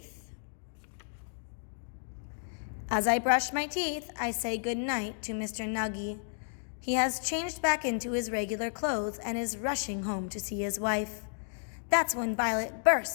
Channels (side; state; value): right; silent; digital silence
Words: As I brush my teeth, I say good night to Mr. Nuggy. He has changed back into his regular clothes and is rushing home to see his wife. That's when Violet